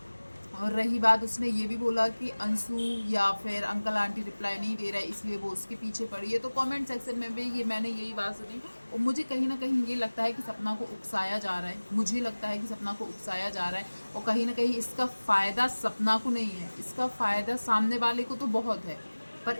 और रही बात, उसने ये भी बोला कि अंशु या फिर अंकल आंटी रिप्लाई नहीं दे रहा है इसलिए वो उसके पीछे पड़ी है। तो कमेंट सेक्शन में भी ये मैंने यही बात सुनी और मुझे कहीं ना कहीं ये लगता है कि सपना को उकसाया जा रहा है, मुझे लगता है कि सपना को उकसाया जा रहा है और कहीं ना कहीं इसका फ़ायदा सपना को नहीं है, इसका फ़ायदा सामने वाले को तो बहुत है, पर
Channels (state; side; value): inverted; both; correlation -1.00